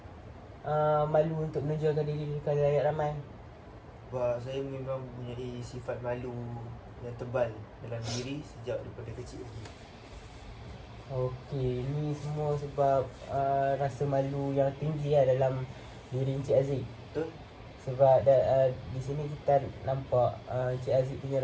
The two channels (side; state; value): both; identical; correlation 1.00